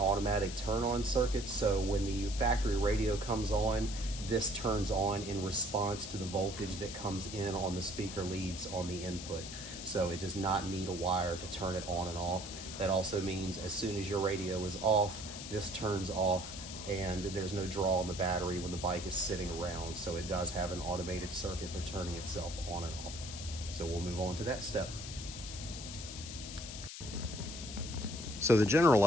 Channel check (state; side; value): noise; left; hiss, 10 dB below the sound